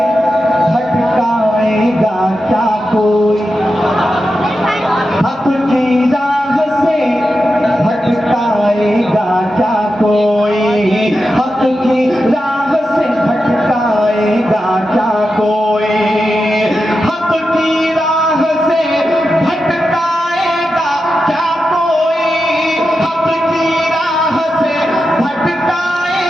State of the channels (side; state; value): both; normal; correlation 0.89